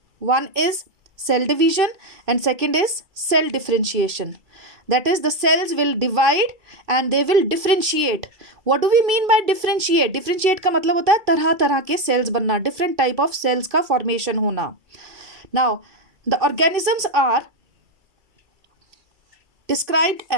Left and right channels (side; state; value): left; late; 2.3 ms